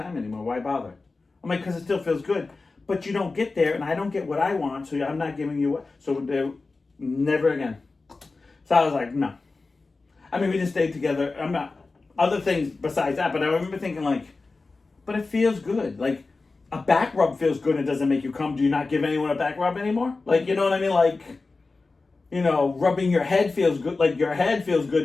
anymore. Why bother? I'm like, because it still feels good. But you don't get there, and I don't get what I want, so I'm not giving you what. So never again. So I was like, no. I mean, we just stayed together. I'm not, other things besides that, but I remember thinking like, but it feels good. Like, a back rub feels good and it doesn't make you come. Do you not give anyone a back rub anymore? Like, you know what I mean? Like, you know, rubbing your head feels good. Like, your head feels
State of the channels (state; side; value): quieter; right; 3.8 dB